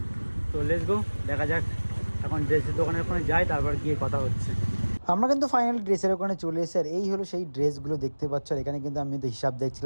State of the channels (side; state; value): both; inverted; correlation -1.00